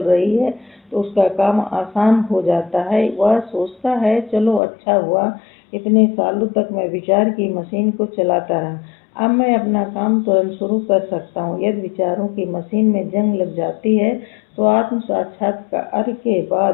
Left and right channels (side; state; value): right; drops out; at 4.6 s